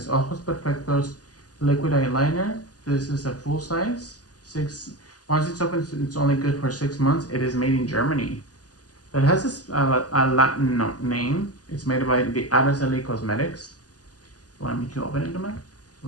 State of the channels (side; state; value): right; late; 0.68 ms